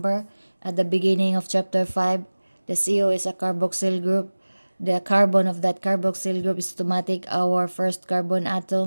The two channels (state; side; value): inverted; both; correlation -1.00